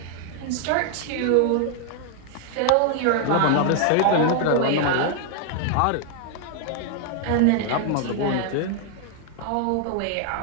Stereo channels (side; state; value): both; different; correlation 0.00